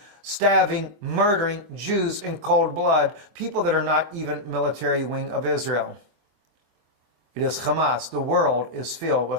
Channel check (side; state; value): left; late; 25 ms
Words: stabbing, murdering Jews in cold blood, people that are not even military wing of Israel. It is Hamas. The world is filled